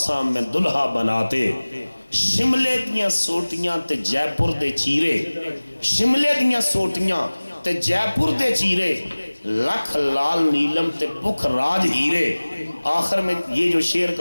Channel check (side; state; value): both; inverted; correlation -1.00